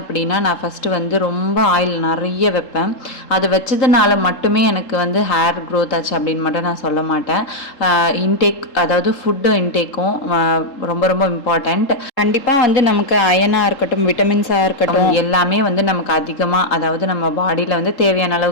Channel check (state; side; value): late; right; 3.8 ms